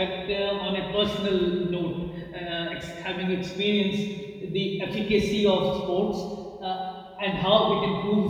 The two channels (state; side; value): identical; both; correlation 1.00